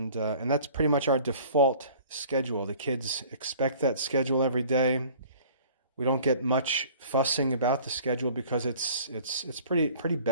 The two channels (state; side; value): inverted; both; correlation -0.50